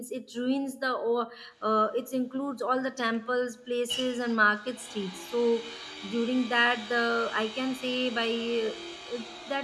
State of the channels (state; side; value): identical; both; correlation 1.00